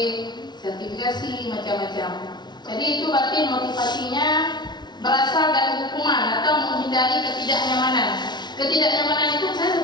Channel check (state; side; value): late; right; 0.20 ms